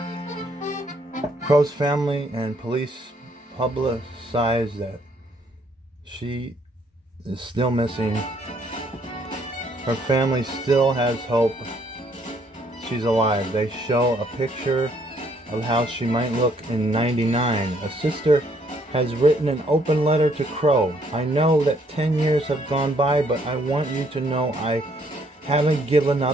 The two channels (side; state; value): both; normal; correlation 0.67